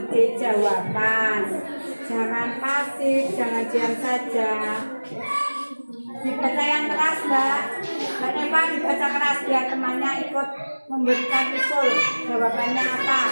ide jawaban. Jangan pasif, jangan diam saja. Dibaca yang keras, Mbak. Mbak Neva dibaca keras biar temannya ikut memberikan usul. Jawabannya apa?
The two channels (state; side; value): inverted; both; correlation -1.00